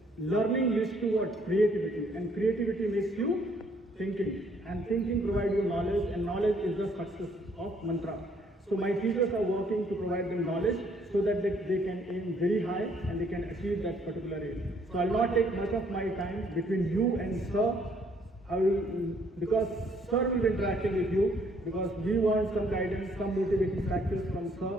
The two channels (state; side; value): normal; both; correlation 0.65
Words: Learning leads to what? Creativity. And creativity makes you thinking. And thinking provides you knowledge, and knowledge is the success of mantra. So my teachers are working to provide them knowledge so that they can aim very high and they can achieve that particular aim. So I'll not take much of my time between you and sir. Because sir will be interacting with you, because we want some guidance, some motivating factors from